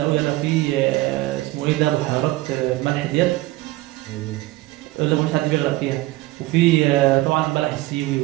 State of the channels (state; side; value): quieter; left; 18.8 dB